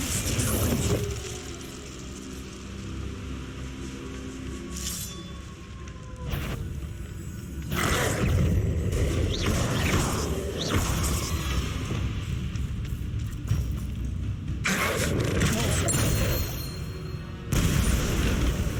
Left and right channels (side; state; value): both; identical; correlation 1.00